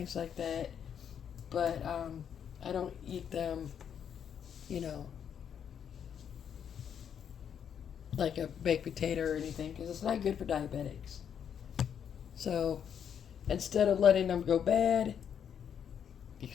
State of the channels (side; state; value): right; quieter; 8.3 dB